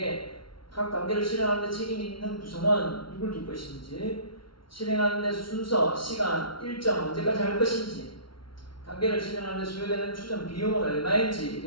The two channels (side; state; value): right; late; 0.74 ms